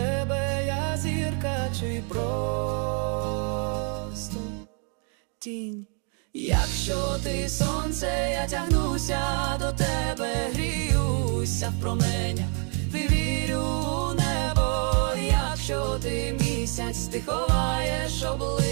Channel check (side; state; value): left; quieter; 39.7 dB